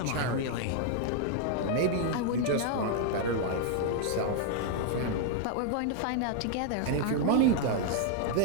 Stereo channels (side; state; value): both; different; correlation 0.00